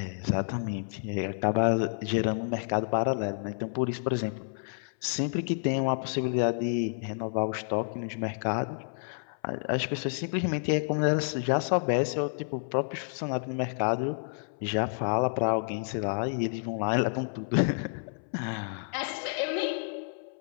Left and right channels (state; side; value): silent; right; 58 dB below the other